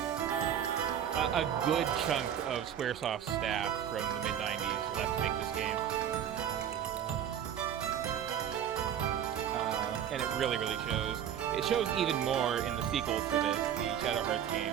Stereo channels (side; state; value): left; quieter; 9.4 dB